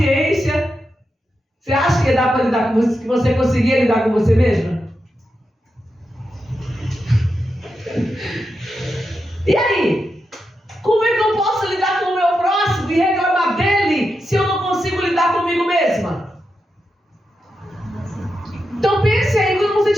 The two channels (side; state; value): both; normal; correlation 0.87